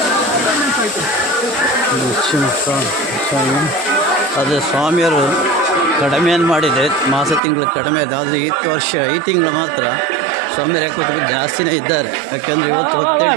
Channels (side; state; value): left; drops out; at 7.4 s